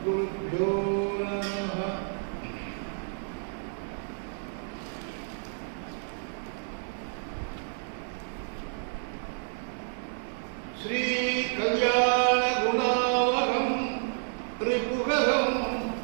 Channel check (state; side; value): silent; left; digital silence